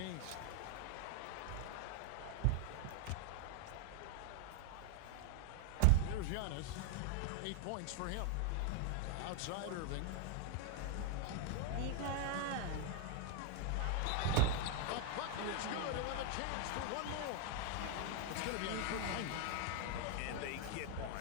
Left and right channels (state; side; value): different; both; correlation 0.00